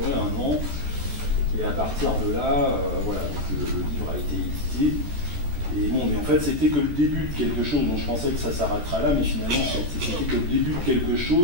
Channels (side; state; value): left; late; 14 ms